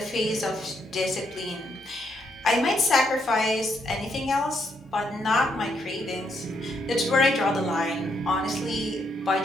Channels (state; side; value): normal; both; correlation 0.76